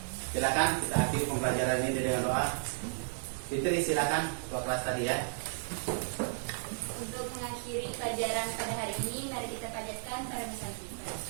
Silakan kita akhiri pembelajaran ini dengan doa. Fitri, silakan ketua kelas tadi ya. Untuk mengakhiri pelajaran pada hari ini, mari kita panjatkan para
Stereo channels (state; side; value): silent; left; digital silence